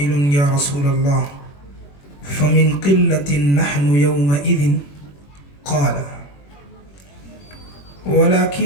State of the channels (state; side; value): late; right; 21 ms